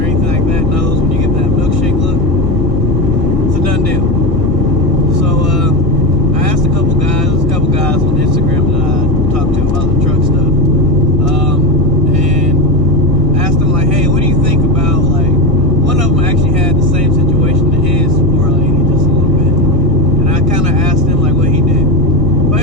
like that knows when you get that milkshake look, it's a done deal. So I asked a couple guys on Instagram that I talked to about the truck stuff, and asked them like, hey, what do you think about, like, one of them actually had the same situation to his 4L80 just a little bit, and I kind of asked him like what he did.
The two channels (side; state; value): left; late; 1.6 ms